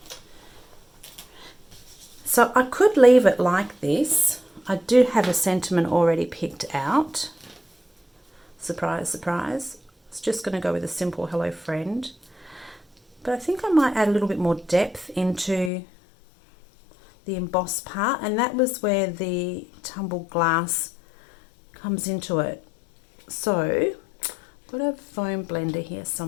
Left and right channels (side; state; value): right; drops out; at 15.7 s